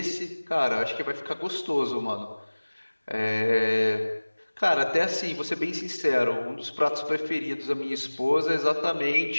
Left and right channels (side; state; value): both; inverted; correlation -1.00